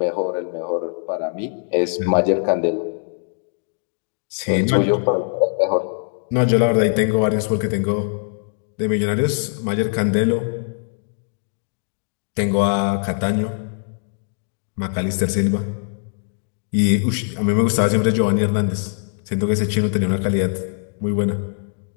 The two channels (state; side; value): silent; right; digital silence